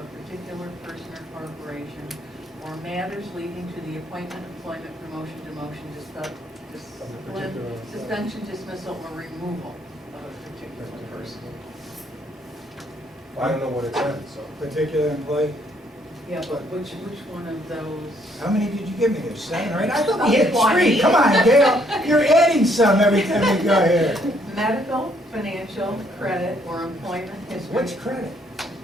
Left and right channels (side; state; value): both; normal; correlation 0.68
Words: particular person or corporation, or matters leading to the appointment, employment, promotion, demotion, suspension, dismissal, or removal of a particular person. Well, I don't know what it said, so. Particular employee. Yeah, but which one of those? How many did you give me there? 7 or 8? I thought we had 20. 3. Come on, Gail. You're adding some every time we go here. Medical, financial, credit, or employment history. Which credit?